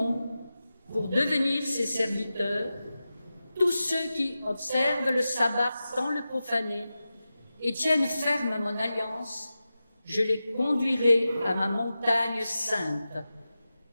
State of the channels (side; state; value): both; inverted; correlation -0.93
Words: pour devenir ses serviteurs, tous ceux qui observent le sabbat sans le profaner et tiennent ferme à mon alliance, je les conduirai à ma montagne sainte.